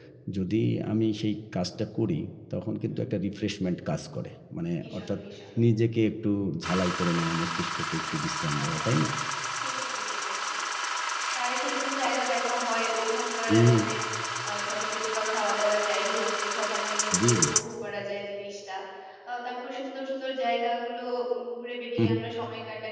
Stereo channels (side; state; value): both; identical; correlation 1.00